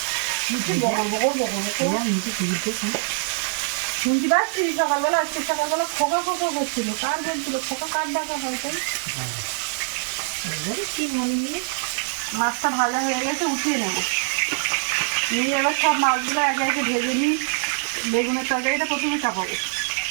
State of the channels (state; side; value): silent; left; 58 dB below the other